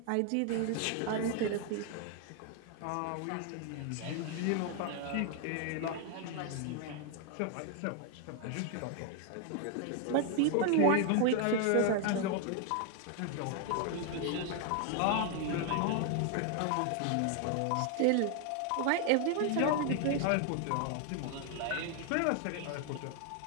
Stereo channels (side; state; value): both; different; correlation 0.00